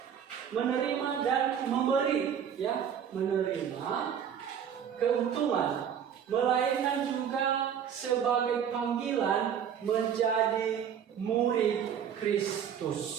menerima dan memberi, ya, menerima keuntungan, melainkan juga sebagai panggilan menjadi murid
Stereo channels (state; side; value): quieter; left; 8.4 dB